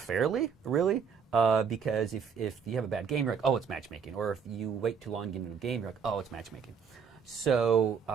really, because if you have a bad game, you're like, oh, it's matchmaking. Or if you wait too long to get into a game, you're like, oh, it's matchmaking. So,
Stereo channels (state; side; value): quieter; left; 6.5 dB